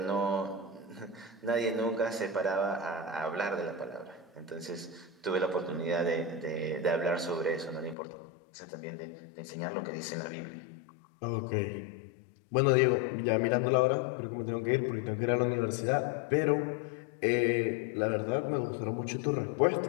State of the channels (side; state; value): right; drops out; at 8.0 s